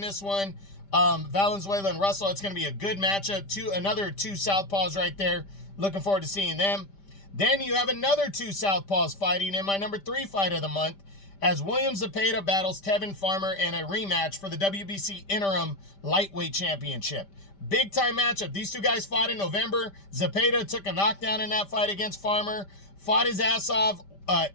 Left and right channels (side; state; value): right; late; 5.1 ms